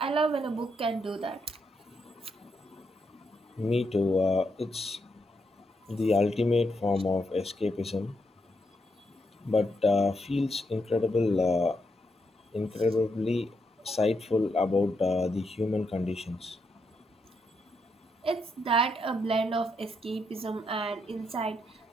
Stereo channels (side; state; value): both; normal; correlation 0.80